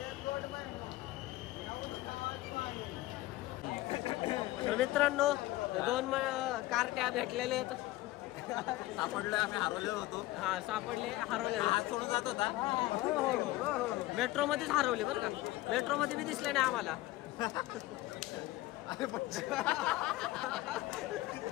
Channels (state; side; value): quieter; right; 17.7 dB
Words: तर मित्रांनो 2 कार्ट्या भेटलेले आहेत. सापडलोय आम्ही हरवलेलो होतो. हा सापडले, हरवले. हात सोडून जात होता. मेट्रो मध्येच हरवले बरं का. मेट्रो मध्ये बी दिसले नाही आम्हाला.